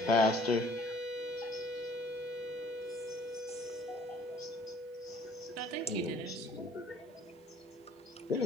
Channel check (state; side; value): normal; both; correlation 0.55